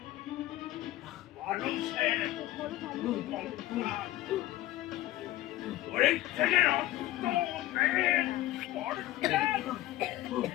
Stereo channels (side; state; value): right; quieter; 15.9 dB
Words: মানুষের শরীর থেকে রক্ত বের করছে।